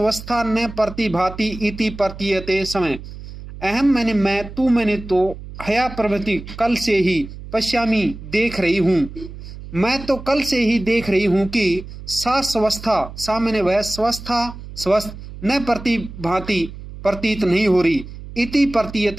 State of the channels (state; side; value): noise; right; hum, 13 dB below the sound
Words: न प्रतिभाति इति प्रतीयते समय। अहम मैंने मैं, तू मैंने तो, हया प्रभृति कल से ही, पश्यामी देख रही हूँ, मैं तो कल से ही देख रही हूँ कि सा स्वस्था, सा मैंने वह, स्वस्था स्वस्थ, न प्रतिभाति प्रतीत नहीं हो रही, इति